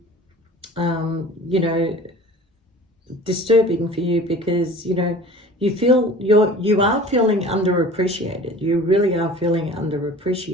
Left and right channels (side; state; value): both; normal; correlation 0.42